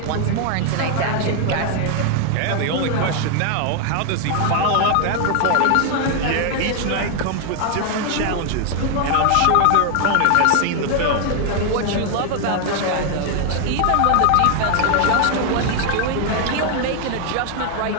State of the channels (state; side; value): different; both; correlation 0.00